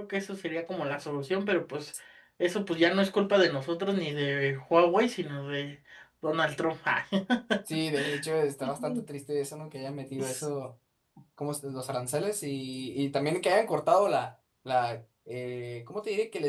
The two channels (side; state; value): both; identical; correlation 1.00